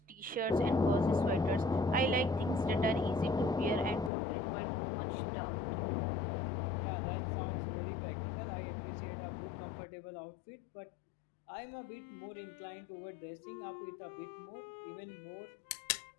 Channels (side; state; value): right; drops out; at 4.1 s